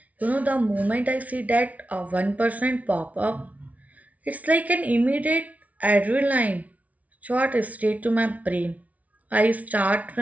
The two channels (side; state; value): left; late; 0.070 ms